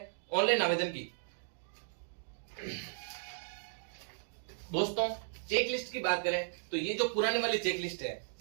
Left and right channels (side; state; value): left; silent; digital silence